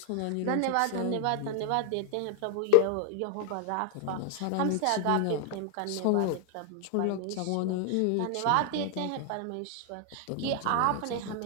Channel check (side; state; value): both; different; correlation 0.00